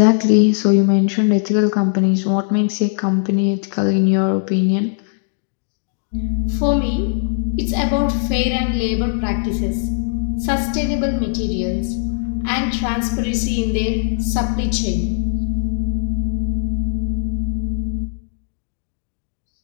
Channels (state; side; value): silent; right; digital silence